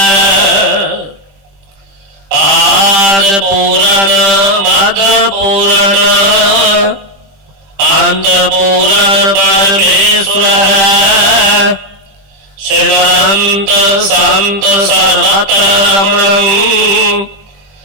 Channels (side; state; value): left; late; 20 ms